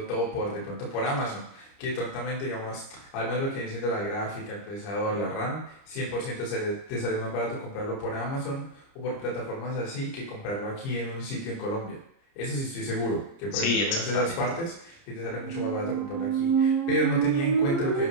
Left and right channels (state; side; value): late; right; 30 ms